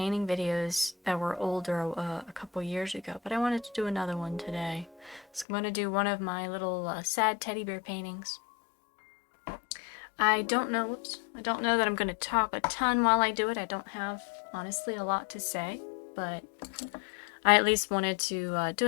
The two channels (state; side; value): drops out; right; at 5.5 s